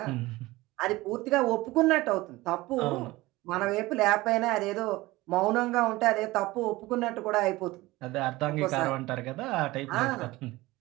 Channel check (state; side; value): quieter; left; 19.7 dB